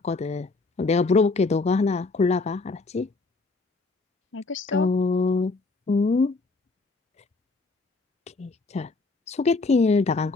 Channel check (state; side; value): quieter; right; 3.7 dB